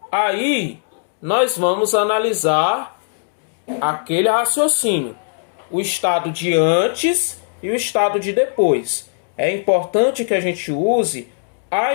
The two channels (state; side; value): silent; right; digital silence